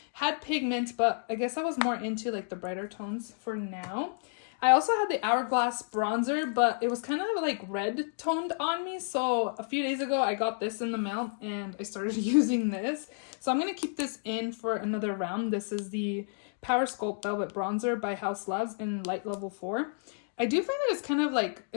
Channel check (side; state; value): right; silent; digital silence